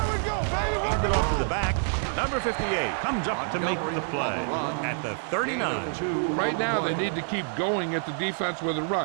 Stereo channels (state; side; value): silent; left; 60 dB below the other